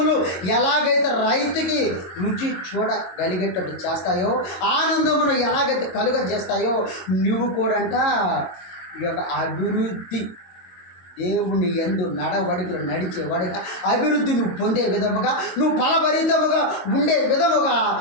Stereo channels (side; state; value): right; late; 22 ms